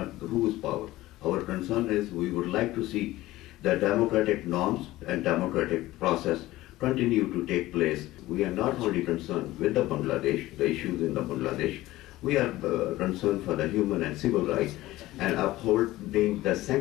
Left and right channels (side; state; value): right; quieter; 17.1 dB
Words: whose power. Our concern is we would like to see the democratic norms and democratic process continue to take place. We are not only concerned with the Bangladesh, the issues in the Bangladesh, we are concerned for the human and civil rights and upholding the